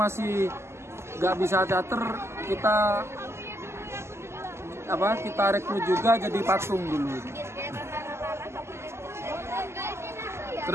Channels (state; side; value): late; left; 0.13 ms